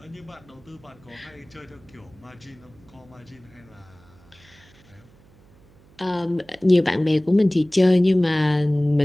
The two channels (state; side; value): noise; right; hum, 27 dB below the sound